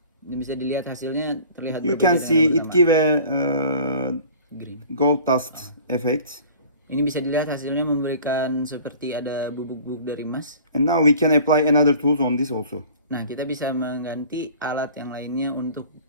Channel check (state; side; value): inverted; both; correlation -0.46